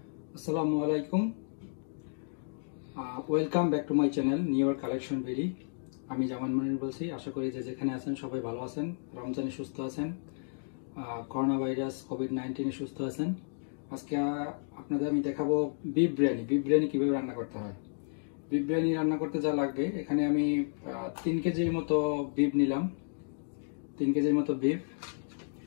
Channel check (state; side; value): silent; right; digital silence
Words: আসসালামু আলাইকুম, welcome back to my channel new year collection very. আমি জামান মনির বলছি। আশা করি যে যেখানে আছেন সবাই ভালো আছেন, রমজানে সুস্থ আছেন, করোনা ভাইরাস কোভিড-19 সুস্থ আছেন। আজকে আপনাদের আমি দেখাবো বিফ বিরিয়ানি। বিফ বিরিয়ানি কীভাবে রান্না করতে হয়। বিফ বিরিয়ানি রান্না করতে যা লাগবে, এখানে আমি 3 কেজির মতো বিফ নিলাম। 3 কেজির মতো বিফ।